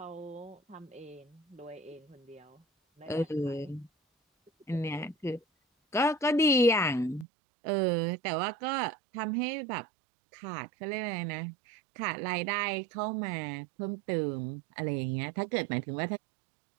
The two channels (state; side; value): drops out; left; at 7.2 s